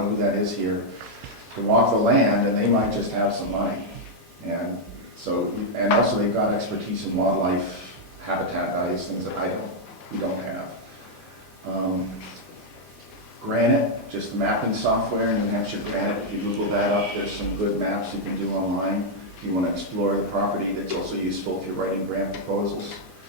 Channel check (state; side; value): normal; both; correlation -0.02